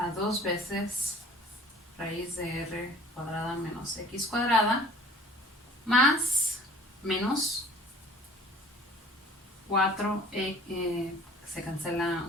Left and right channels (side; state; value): both; normal; correlation 0.49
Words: 2 veces raíz de r cuadrada menos x cuadrada más menos 4, se cancela